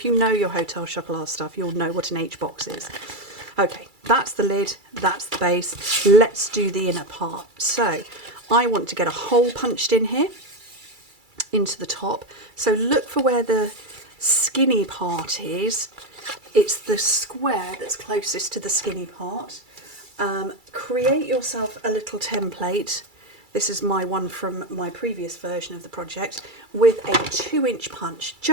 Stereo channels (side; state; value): left; late; 2.3 ms